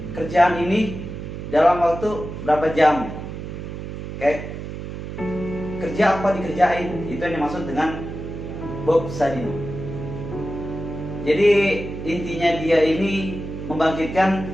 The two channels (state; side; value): noise; right; hum, 8 dB below the sound